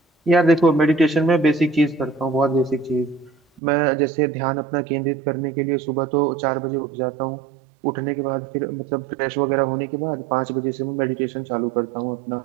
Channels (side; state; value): left; drops out; at 3.6 s